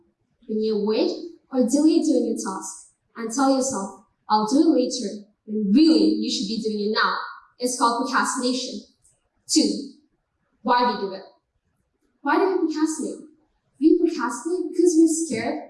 When you avoid or delay doing a task and tell yourself, I'll do it later, when really you should be doing it now. It's called procrastination. 2. Why we do it? Why do we procrastinate? We procrastinate because we're scared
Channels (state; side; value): identical; both; correlation 1.00